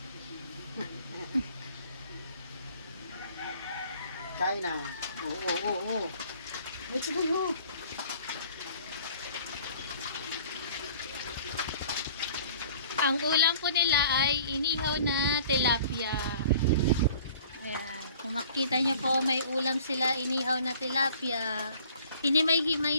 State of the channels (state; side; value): inverted; both; correlation -0.51